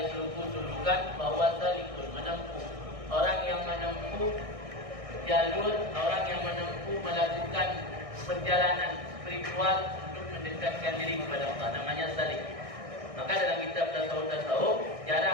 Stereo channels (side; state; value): left; late; 1.6 ms